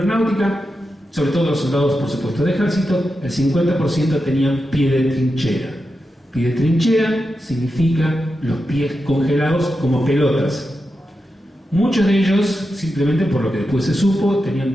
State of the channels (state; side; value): normal; both; correlation 0.89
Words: sobre todo los soldados, por supuesto, de ejército, el 50% tenían pie de trinchera. Pie de trinchera significa los pies congelados como pelotas. Muchos de ellos, simplemente por lo que después se supo,